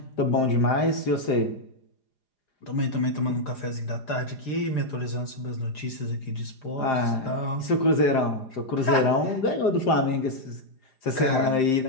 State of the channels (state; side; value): late; right; 4.9 ms